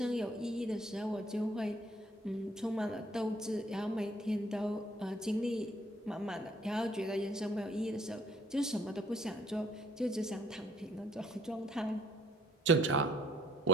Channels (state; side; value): normal; both; correlation 0.63